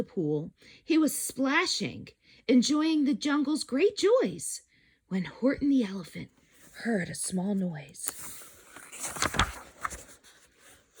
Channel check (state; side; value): identical; both; correlation 1.00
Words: pool, he was splashing, enjoying the jungle's great joys, when Horton the elephant heard a small noise.